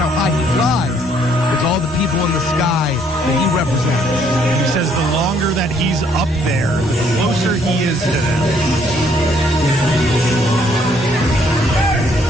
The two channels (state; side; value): normal; both; correlation 0.66